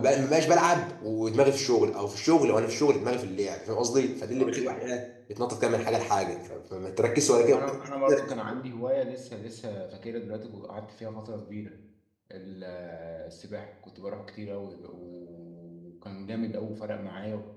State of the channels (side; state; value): both; identical; correlation 1.00